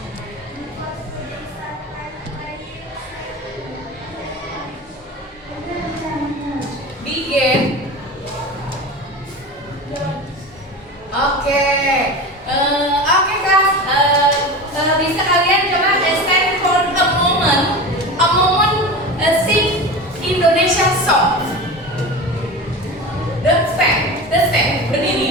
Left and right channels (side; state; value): both; normal; correlation 0.29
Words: Begin. Oke, kelas. Bisa kalian coba stand for a moment, sing Indonesia song. The stand,